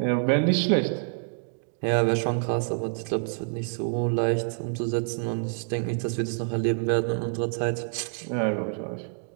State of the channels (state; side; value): silent; left; digital silence